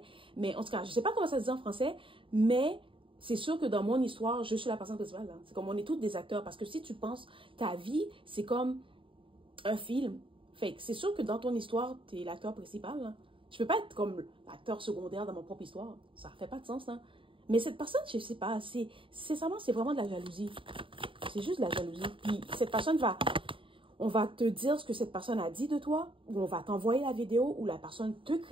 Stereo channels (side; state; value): left; late; 0.25 ms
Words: mais en tout cas, je sais pas comment ça se dit en français, mais... C'est sûr que dans mon histoire, je suis la personne principale. Hein. C'est comme on est tous des acteurs. Parce que si tu penses, ta vie, c'est comme un film. Fait que c'est sûr que dans ton histoire, tu es l'acteur principal. Hein. Je peux pas être comme l'acteur secondaire dans mon propre histoire. Ça fait pas de sens. Hein. Mais cette personne, je sais pas, c'est vraiment de la jalousie. C'est juste de la jalousie. Puis cette personne on va te dire ce que cette personne a dit de toi, ou on va t'envoyer la vidéo où la personne te